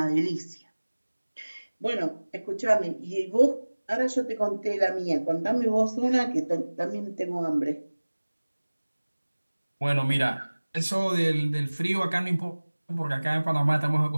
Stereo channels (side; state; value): both; inverted; correlation -1.00